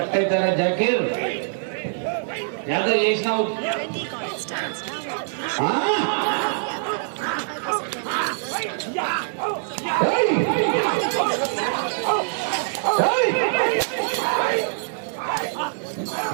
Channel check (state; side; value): silent; left; digital silence